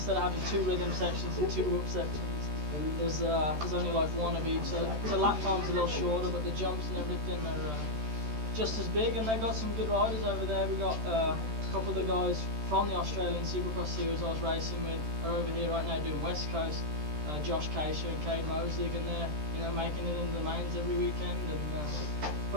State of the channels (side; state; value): left; late; 13 ms